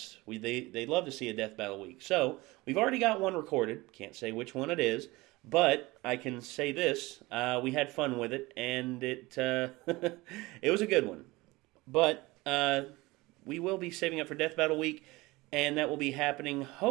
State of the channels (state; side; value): quieter; left; 21.4 dB